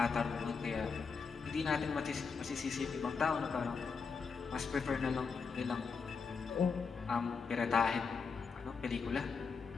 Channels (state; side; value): quieter; right; 5.3 dB